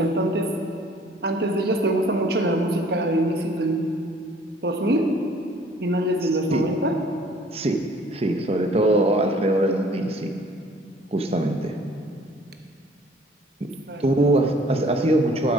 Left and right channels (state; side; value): normal; both; correlation 0.55